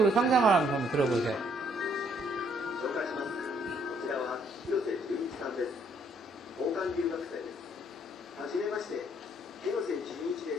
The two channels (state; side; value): normal; both; correlation 0.67